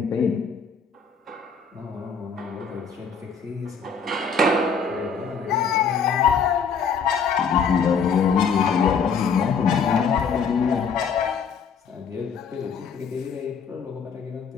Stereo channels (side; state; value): right; quieter; 5.7 dB